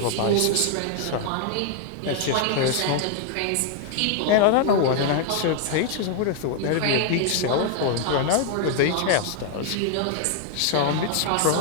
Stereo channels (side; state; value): both; different; correlation 0.00